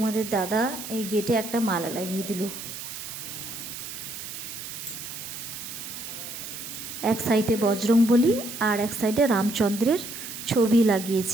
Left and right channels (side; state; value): right; noise; hiss, 9 dB below the sound